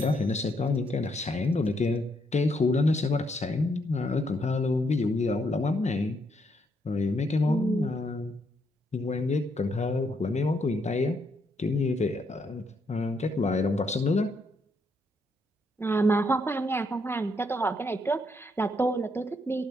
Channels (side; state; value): both; normal; correlation 0.75